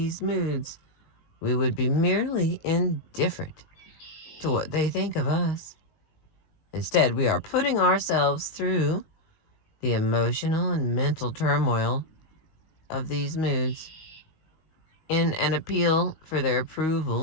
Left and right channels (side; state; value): right; late; 19 ms